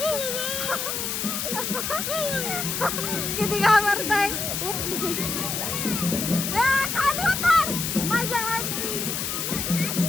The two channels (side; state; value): left; noise; hiss, 2 dB below the sound